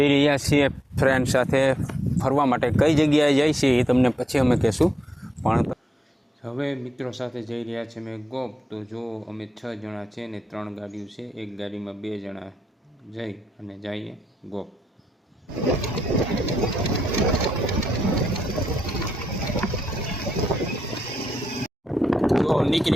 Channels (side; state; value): both; normal; correlation 0.83